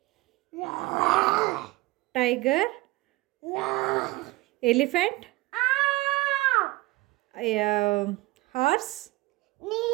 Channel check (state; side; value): quieter; left; 20.4 dB